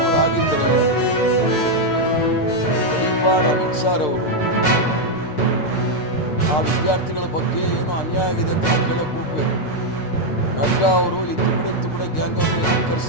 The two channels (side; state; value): right; late; 6.6 ms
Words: ಅವರು ಆಗಿದ್ದರೆ ಅಮಿತ್ ಶಾ ಅವರು ಆ ವಿದ್ಯಾರ್ಥಿಗಳ ಬಗ್ಗೆ ಏನೋ ಅನ್ಯಾಯ ಆಗಿದೆ ಅಂತ ಕೇಳಕ್ಕೆ ಹೋಗ್ಬೇಕು. ನಡ್ಡಾ ಅವರು ಈ ತುಕಡೆ ಗ್ಯಾಂಗ್ ಅವ್ರನ್ನ ಯಾಕೆ